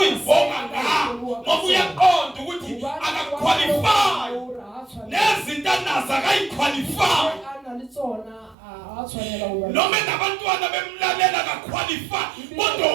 ngayo ngoba uyaqonda ukuthi akaqualify nezinto anazo akayiqualify noma nabantwana bemlalela akaqualify kodwa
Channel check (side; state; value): left; drops out; at 8.6 s